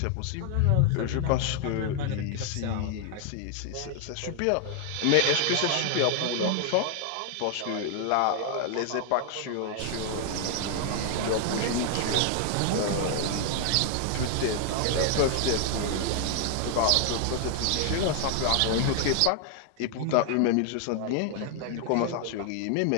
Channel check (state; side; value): different; both; correlation 0.00